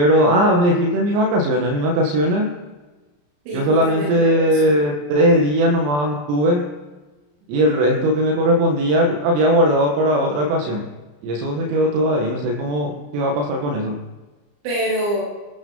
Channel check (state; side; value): late; left; 34 ms